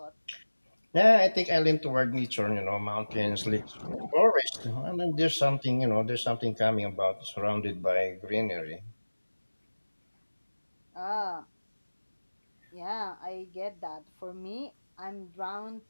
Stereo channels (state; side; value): inverted; both; correlation -1.00